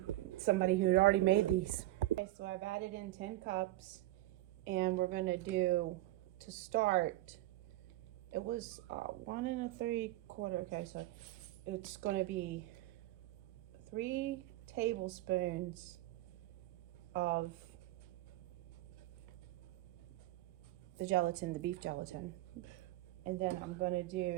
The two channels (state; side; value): quieter; left; 16.6 dB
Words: somebody who had already made these. Okay, so I've added in 10 cups, and we're going to do, to start, it was 1 3/4. Okay, so it's going to be 3 tablespoons of the gelatin, the beef gelatin. And then I'm going to